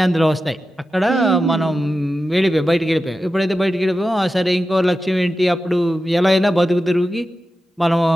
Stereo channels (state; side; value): normal; both; correlation 0.92